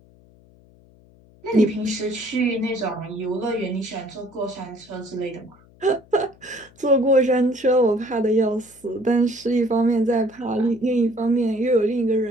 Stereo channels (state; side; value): noise; left; hum, 27 dB below the sound